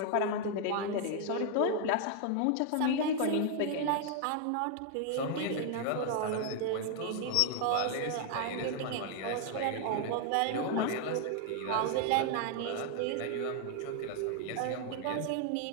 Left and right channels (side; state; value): both; different; correlation 0.00